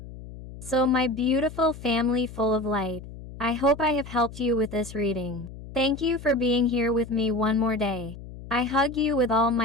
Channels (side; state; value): left; noise; hum, 14 dB below the sound